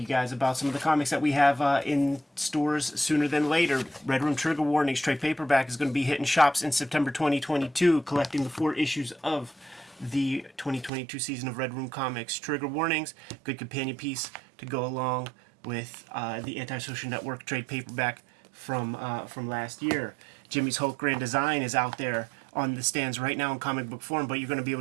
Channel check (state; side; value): drops out; left; at 10.9 s